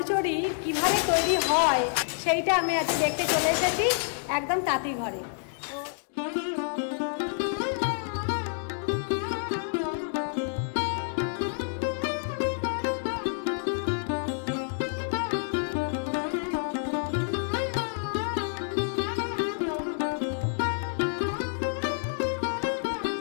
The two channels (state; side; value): silent; right; digital silence